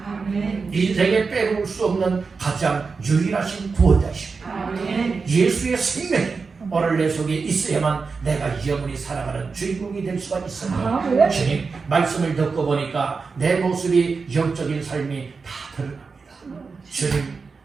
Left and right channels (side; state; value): left; quieter; 4.7 dB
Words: 인생에 빼놓을 수 없는 가장 유일하신 구원자이십니다. 예수의 생명이 오늘 내 속에 있어야만 내가 영원히 살아가는 주인공이 될 수가 있습니다. 주님 말씀을 듣고 보니까 내 모습이 영적인 삶이 다 드러납니다. 주님